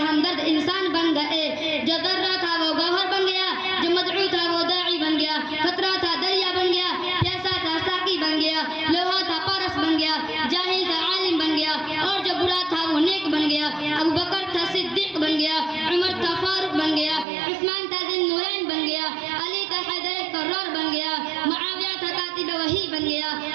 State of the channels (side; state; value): left; drops out; at 17.2 s